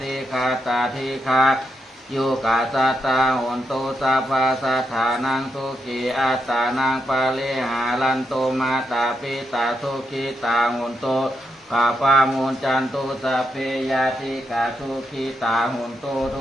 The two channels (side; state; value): both; normal; correlation 0.82